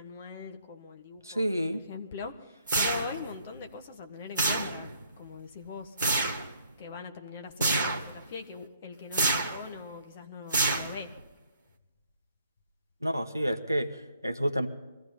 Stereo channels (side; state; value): both; inverted; correlation -0.66